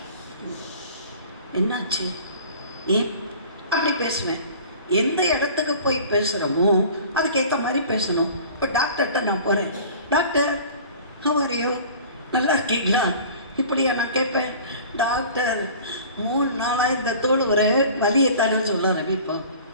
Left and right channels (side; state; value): both; inverted; correlation -0.44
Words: என்னாச்சு, ஏன் அப்படி பேசுவேன். எந்த இடத்துக்கு போய் பேசுகிறோமோ அதுக்கேற்ற மாதிரி பேசணும். இப்போ டாக்டர்கிட்ட நான் போகிறேன், டாக்டர் ஹவ் நல்லா இருக்கீங்களா, இப்படியா நான் கேட்பேன். டாக்டர் 3 நாளாக இந்த தோல் ஒரு வலியத்தானு சொல்ல ஆரம்பிப்போம்.